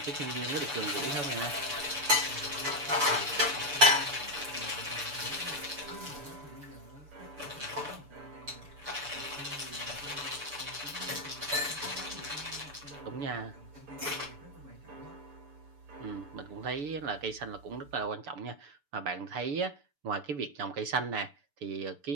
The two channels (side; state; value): left; late; 6.9 ms